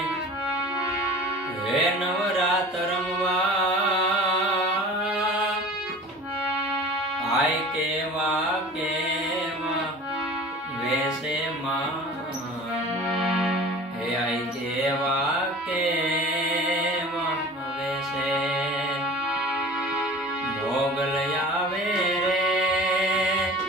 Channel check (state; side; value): normal; both; correlation 0.41